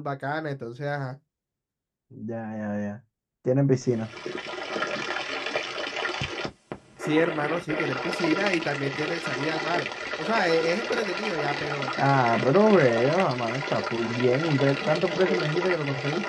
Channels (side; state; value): both; identical; correlation 1.00